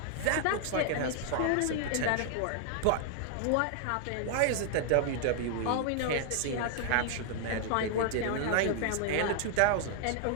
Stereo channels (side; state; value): both; different; correlation 0.00